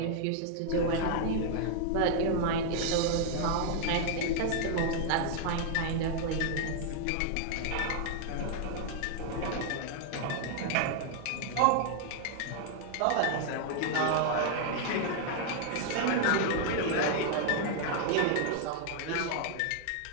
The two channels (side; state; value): both; different; correlation 0.00